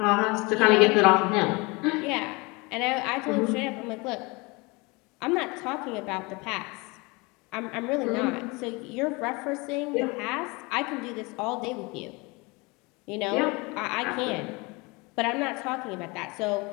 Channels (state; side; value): quieter; right; 26.2 dB